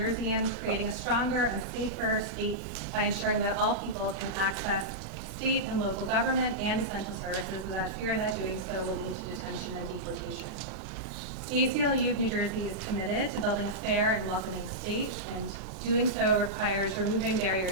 creating a stronger and safer state by ensuring that all people can access state and local government and essential services without fear that doing so will lead to detention and deportation. The ACLU of New Jersey is committed to building a fair and welcoming state, and doing so requires removing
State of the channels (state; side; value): normal; both; correlation -0.10